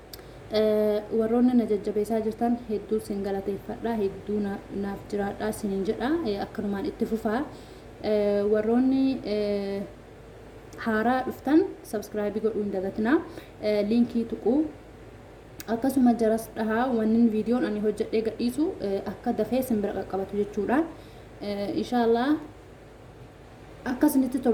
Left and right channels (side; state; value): both; identical; correlation 1.00